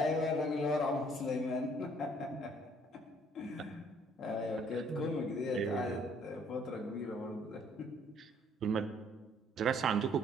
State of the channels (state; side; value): normal; both; correlation 0.62